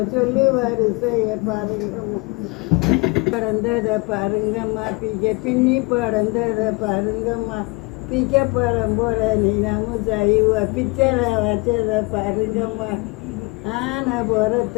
சொல்லு வரிசையை பாருங்கம்மா, படந்ததை பாருங்கம்மா, பின்னி படந்ததை பாருங்கம்மா, பழம் போல நீனாமும் செய்வ பிச்சரை வச்சதை பாருங்கம்மா, ஆனை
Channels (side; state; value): right; quieter; 26.8 dB